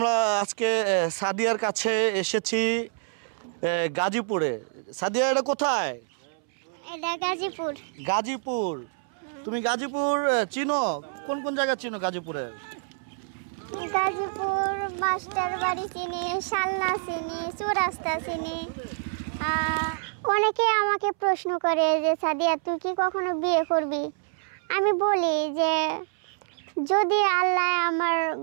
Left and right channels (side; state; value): left; silent; 60 dB below the other